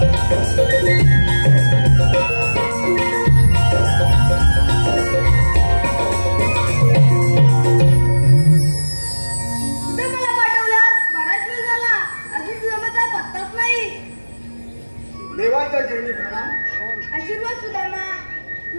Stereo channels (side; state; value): both; inverted; correlation -1.00